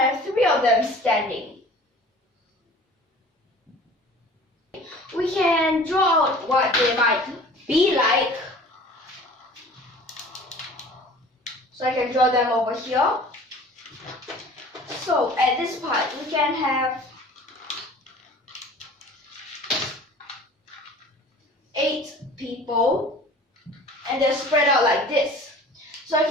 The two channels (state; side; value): normal; both; correlation 0.45